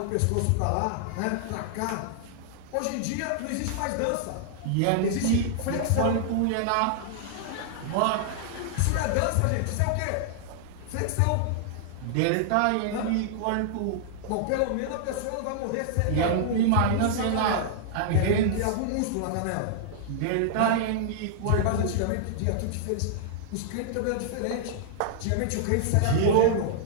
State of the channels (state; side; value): different; both; correlation -0.01